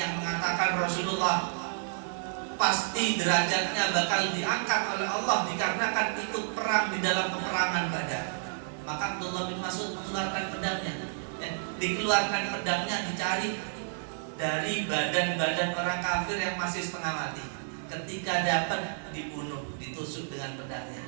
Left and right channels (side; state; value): left; silent; 58 dB below the other